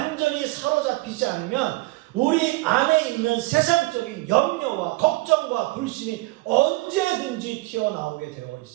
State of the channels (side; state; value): left; quieter; 22.1 dB